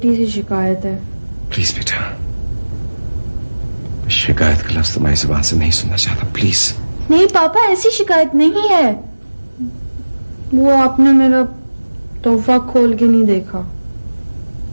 सी शिकायत है। प्लीज बेटा, शिकायत का लफ्ज तुम्हारी जुबान से नहीं सुनना चाहता, प्लीज। नहीं पापा, ऐसी शिकायत नहीं है। वो आपने मेरा तोहफा खोल के नहीं देखा।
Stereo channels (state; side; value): inverted; both; correlation -1.00